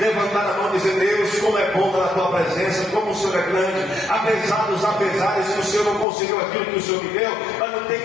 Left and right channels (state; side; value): drops out; right; at 6.1 s